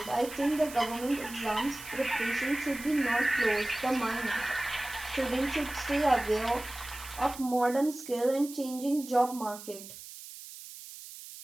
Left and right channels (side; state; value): right; noise; hiss, 14 dB below the sound